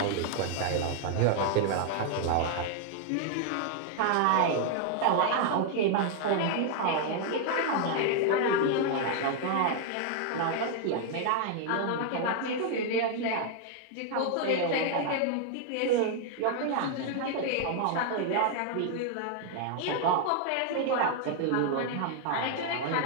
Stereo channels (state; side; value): different; both; correlation 0.00